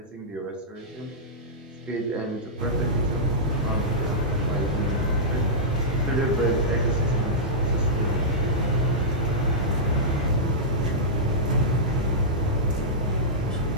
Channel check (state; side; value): normal; both; correlation -0.13